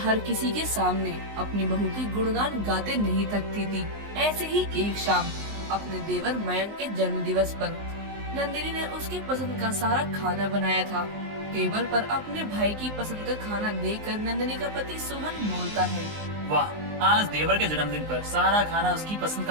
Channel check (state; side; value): late; left; 19 ms